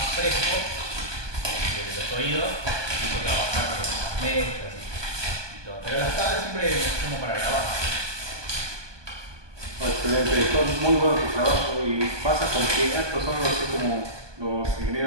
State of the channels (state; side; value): late; left; 1.2 ms